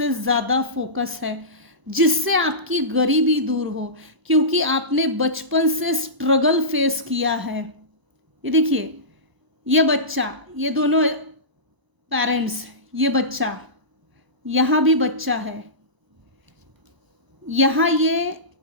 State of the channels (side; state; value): left; late; 1.0 ms